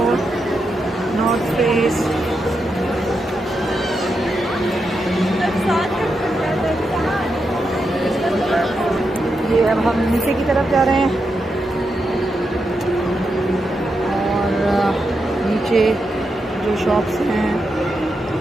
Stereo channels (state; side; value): normal; both; correlation 0.85